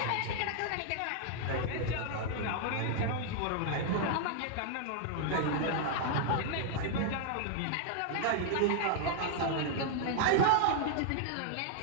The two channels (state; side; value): different; both; correlation 0.00